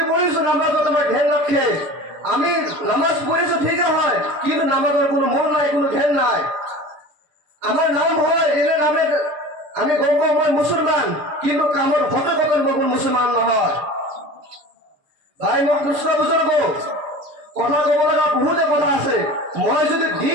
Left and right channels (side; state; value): left; late; 6.6 ms